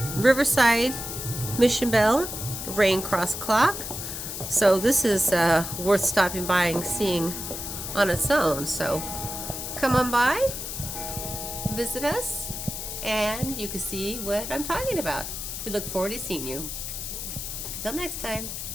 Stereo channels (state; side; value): noise; left; hiss, 6 dB below the sound